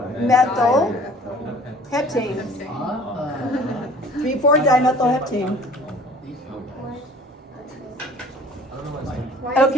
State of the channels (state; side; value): normal; both; correlation 0.49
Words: heptane. 3, 4 dimethyl heptane.